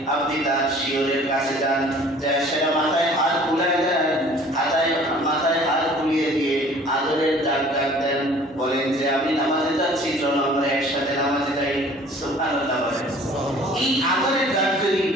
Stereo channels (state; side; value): normal; both; correlation 0.51